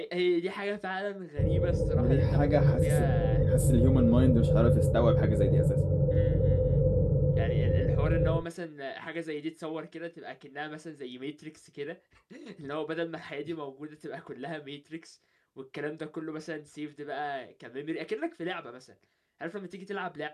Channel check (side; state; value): both; identical; correlation 1.00